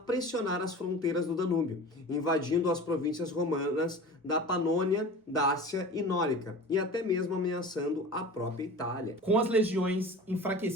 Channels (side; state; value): both; normal; correlation 0.37